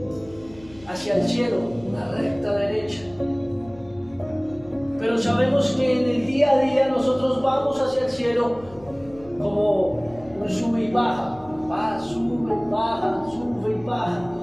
hacia el cielo, una recta derecha. Pero sabemos que en el día a día nosotros vamos hacia el cielo como un sube y baja. Va, sube, baja, sube y baja.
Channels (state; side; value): noise; left; hum, 23 dB below the sound